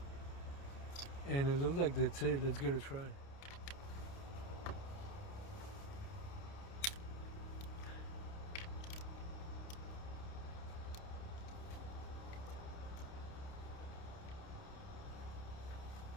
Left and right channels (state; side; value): late; right; 29 ms